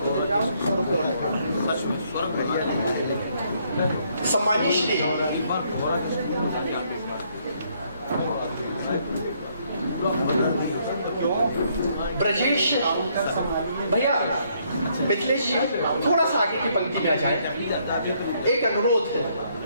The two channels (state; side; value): inverted; both; correlation -0.69